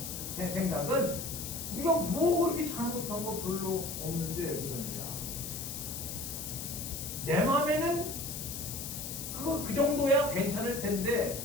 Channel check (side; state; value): left; noise; hiss, 6 dB below the sound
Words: 생각은 우리가 뭐 그렇게 잘못한 거 별로 없는데 그러냐. 내 마음에는 그 정도야 괜찮을 텐데